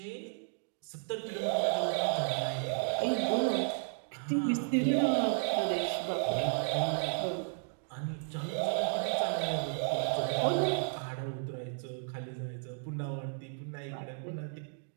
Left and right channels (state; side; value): silent; left; 55 dB below the other